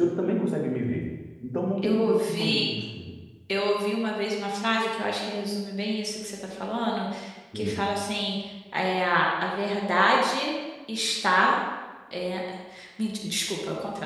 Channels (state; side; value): identical; both; correlation 1.00